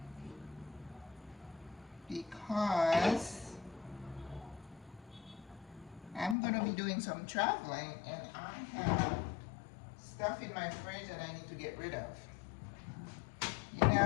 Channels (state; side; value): drops out; right; at 6.4 s